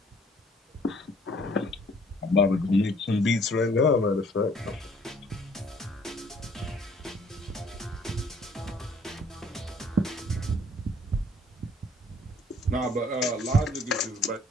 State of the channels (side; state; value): both; normal; correlation 0.60